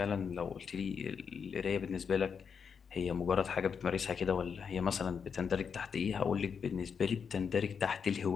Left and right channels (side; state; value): right; quieter; 6.5 dB